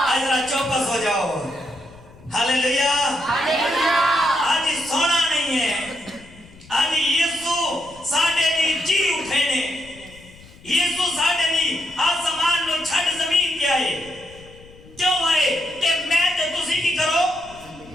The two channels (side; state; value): left; noise; rumble, 22 dB below the sound